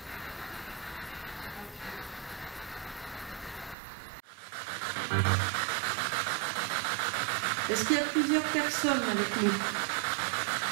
Est-ce qu'il y a plusieurs personnes avec nous?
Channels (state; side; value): drops out; left; at 3.8 s